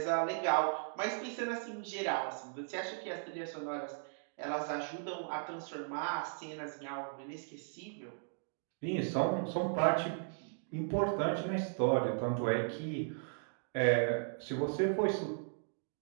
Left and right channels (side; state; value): left; silent; digital silence